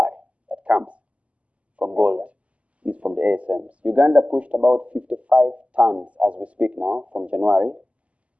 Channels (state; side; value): late; left; 0.063 ms